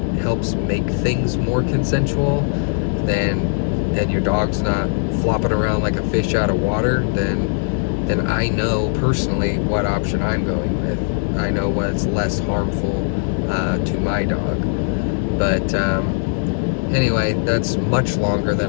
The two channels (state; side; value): silent; right; digital silence